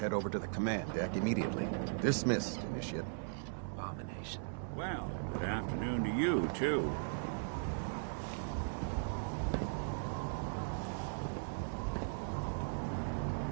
over to the command deck immediately. Dismissed, Initiate. Abomination. Well, good afternoon to you, too.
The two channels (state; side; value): silent; left; digital silence